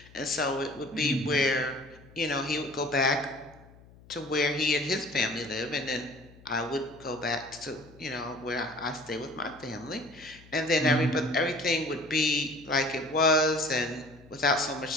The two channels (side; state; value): left; noise; hum, 23 dB below the sound